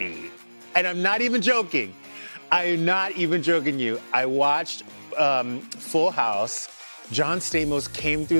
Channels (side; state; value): both; inverted; correlation -1.00